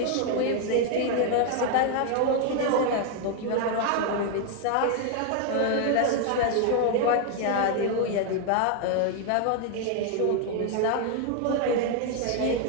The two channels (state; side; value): different; both; correlation 0.01